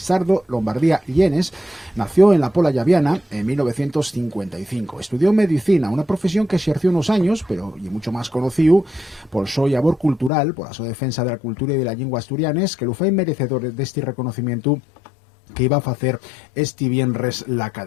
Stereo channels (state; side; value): drops out; right; at 10.3 s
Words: Lombardía Llenes, nació en la Pola Llaviana en 1955. Estudió medicina, una profesión que ejerció unos años, pero y mucho más conocido por su labor cultural, por su defensa de la cultura y de la lengua asturianes, que lo fue merecedor de este reconocimiento que iba a hacer este viernes la